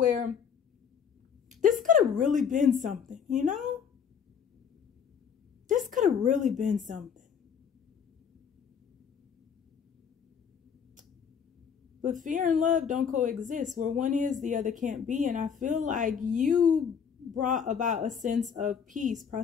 this could have really been something, you know? This could have really been something. But fear and love don't coexist. Where one is, the other can't be. And I feel like you brought about a sense of peace,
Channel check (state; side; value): quieter; right; 7.2 dB